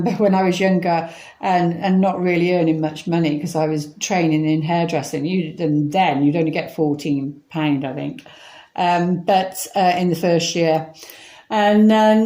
when I was younger and not really earning much money because I was training in hairdressing. Then you'd only get £14, I think, but in the first year. And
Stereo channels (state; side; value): identical; both; correlation 1.00